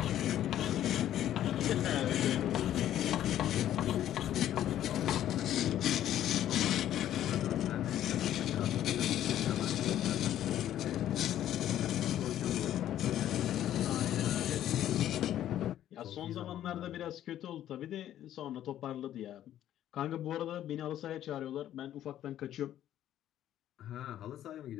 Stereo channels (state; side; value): quieter; right; 11.8 dB